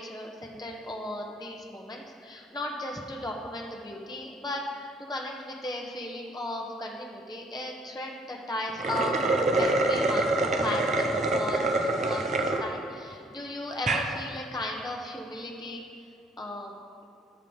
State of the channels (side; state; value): both; normal; correlation 0.60